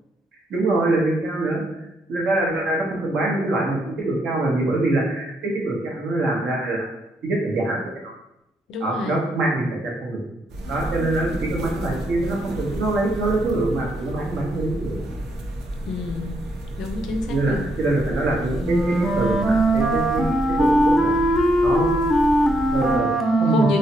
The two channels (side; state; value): both; normal; correlation 0.75